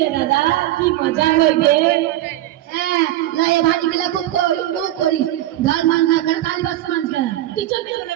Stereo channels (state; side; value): quieter; left; 14.4 dB